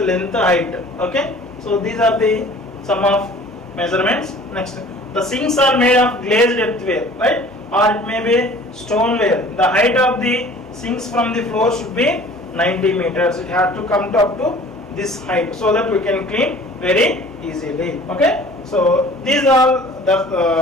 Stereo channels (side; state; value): both; normal; correlation 0.48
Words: height. Okay. So these are the sum of measurements. Next, the sinks are made of glazed earthenware, right? Or it may be stoneware. The height of the sinks from the floor should be 90 meters. It has to come up to this height so that we can clean very easily. Okay. So these are